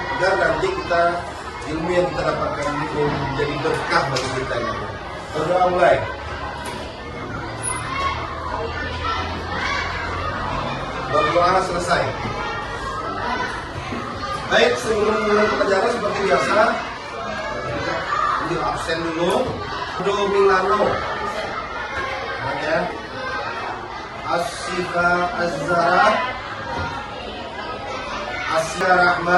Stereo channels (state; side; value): identical; both; correlation 1.00